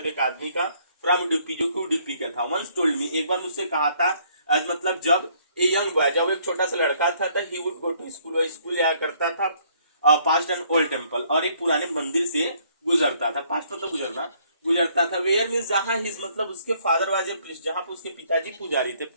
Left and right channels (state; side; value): inverted; both; correlation -0.65